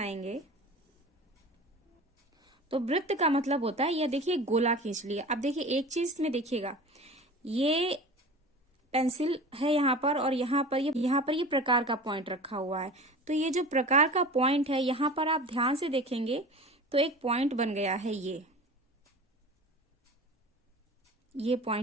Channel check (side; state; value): both; normal; correlation 0.36